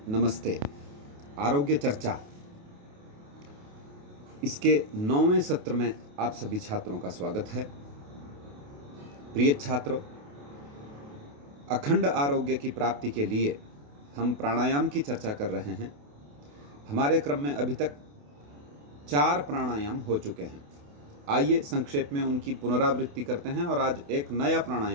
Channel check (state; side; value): late; left; 28 ms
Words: नमस्ते। आरोग्य चर्चा इसके 9वें सत्र में आप सभी छात्रों का स्वागत है। प्रिय छात्रों, अखंड आरोग्य की प्राप्ति के लिए हम प्राणायाम की चर्चा कर रहे हैं। हमारे क्रम में अभी तक 4 प्राणायाम हो चुके हैं। आइए संक्षेप में उनकी पुनरावृत्ति करते हैं और आज एक नया